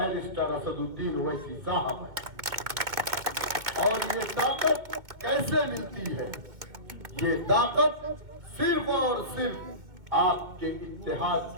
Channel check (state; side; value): late; left; 1.8 ms